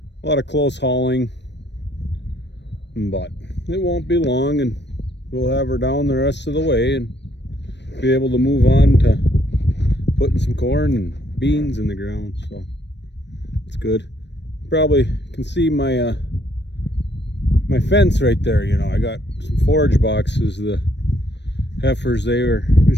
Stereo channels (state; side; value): late; right; 0.51 ms